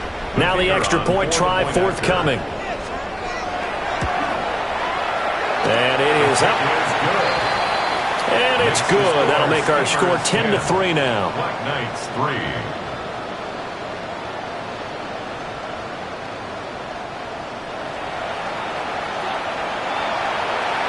Now the extra point try forthcoming. And it is up. And it's good. That'll make our score 10-3 now. Black Knights 3.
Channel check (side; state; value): both; identical; correlation 1.00